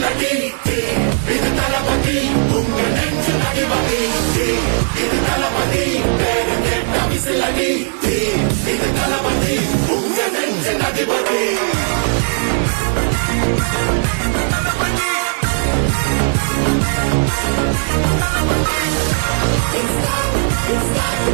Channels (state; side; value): silent; left; 68 dB below the other